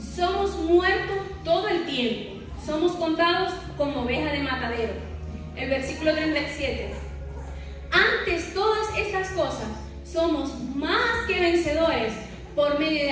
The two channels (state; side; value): identical; both; correlation 1.00